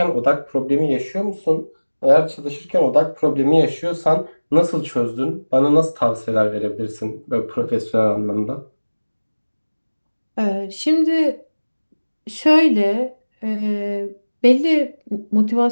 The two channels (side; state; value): both; inverted; correlation -1.00